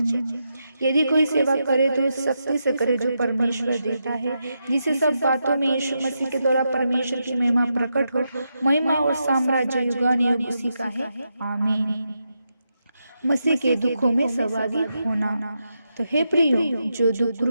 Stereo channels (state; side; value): inverted; both; correlation -0.85